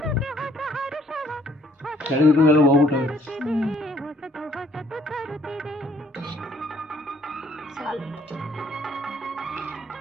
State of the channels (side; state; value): both; normal; correlation 0.64